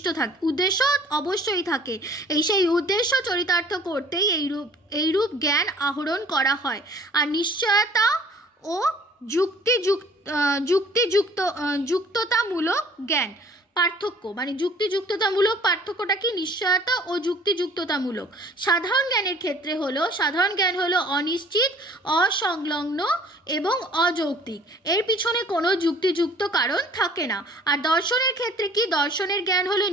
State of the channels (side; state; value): both; normal; correlation 0.52